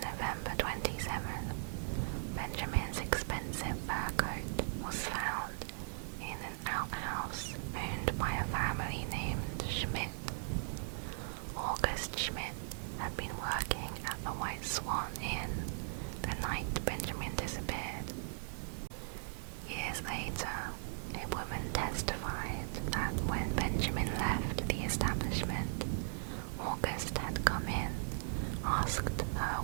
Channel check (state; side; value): silent; left; digital silence